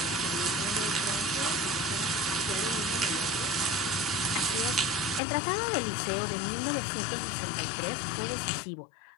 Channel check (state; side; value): drops out; right; at 5.2 s